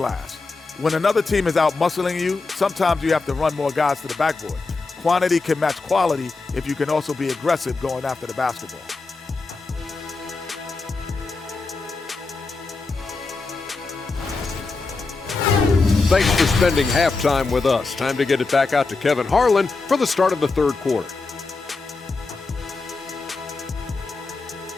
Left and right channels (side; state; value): right; quieter; 3.9 dB